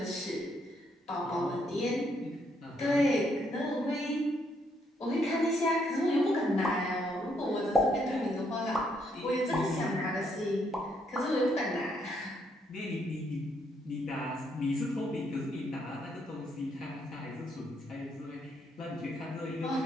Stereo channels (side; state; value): both; normal; correlation 0.73